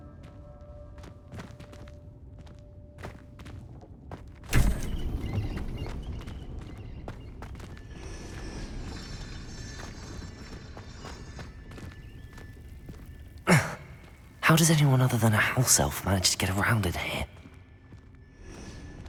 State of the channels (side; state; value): both; identical; correlation 1.00